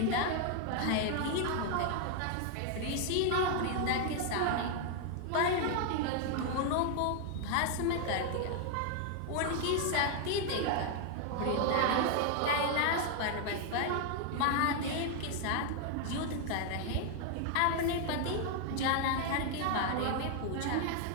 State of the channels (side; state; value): both; different; correlation 0.00